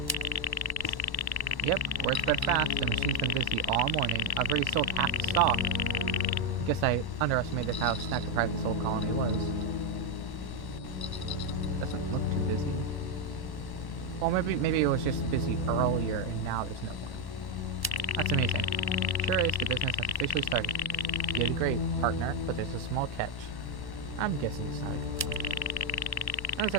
Yep, word spread fast. The machine's been busy all morning. I've already sold half the stock. I guess I underestimated how snack deprived this whole colony was. Doesn't look too busy. Well, maybe it was just busy earlier, and now there's no more. That's amazing. Sure is, the business has officially started. You did great, partner, but there's a small catch. I'm guessing it's not a good one. Not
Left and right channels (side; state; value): right; late; 1.1 ms